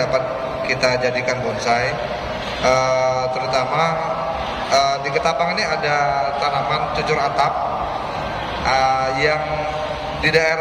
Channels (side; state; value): both; identical; correlation 1.00